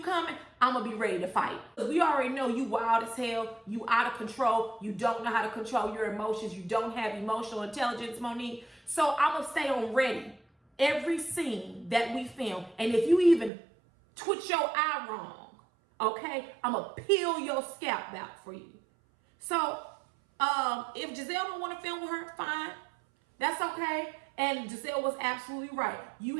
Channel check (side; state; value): left; drops out; at 13.5 s